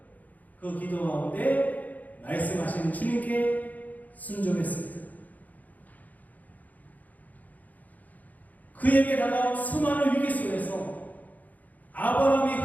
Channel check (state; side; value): late; right; 0.079 ms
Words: 그 기도 가운데 말씀하시는 주님께 순종했습니다. 그에게 다가온 수많은 위기 속에서 아브라함이